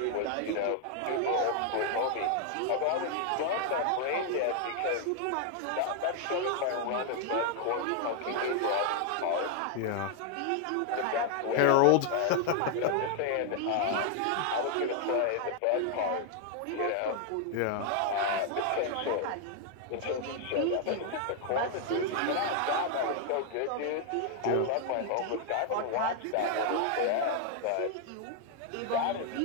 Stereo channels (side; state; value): both; different; correlation 0.00